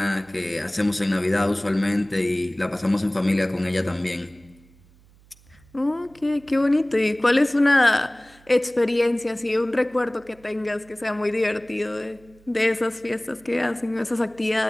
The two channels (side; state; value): right; noise; hum, 28 dB below the sound